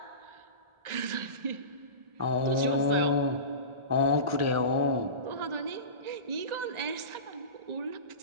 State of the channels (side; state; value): left; late; 1.4 ms